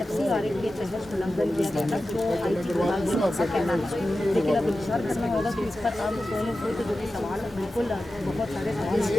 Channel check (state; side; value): normal; both; correlation 0.93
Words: FCRA के तहत उल्लंघन किया गया था जो IT विभाग का कहना है लेकिन अब इंतजार करना होगा कि इस पर अब सोनू सूद जो कि सवाल बिल्कुल बहुत सारे सवाल